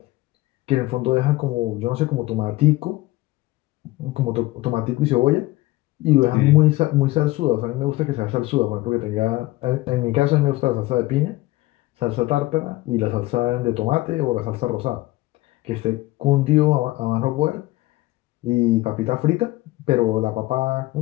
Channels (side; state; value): right; quieter; 18.9 dB